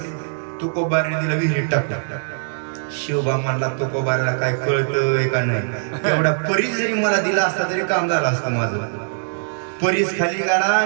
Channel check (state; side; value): silent; left; digital silence